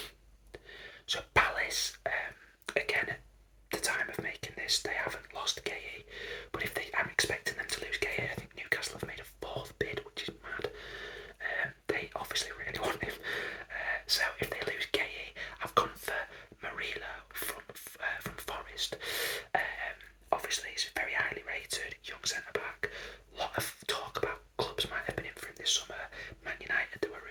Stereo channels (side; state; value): both; identical; correlation 1.00